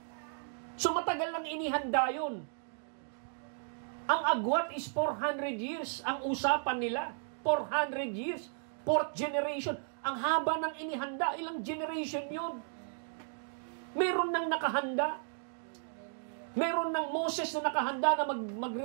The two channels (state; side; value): silent; left; digital silence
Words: So matagal lang inihanda yun. Ang agwat is 400 years. Ang usapan nila, 400 years. 4th generation. Ang haba ng inihanda, ilang generation yun. Meron nang nakahanda. Meron ng Moses na nakahanda na